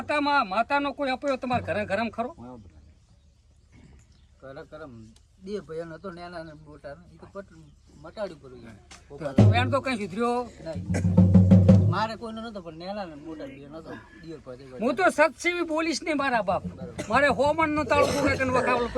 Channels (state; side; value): identical; both; correlation 1.00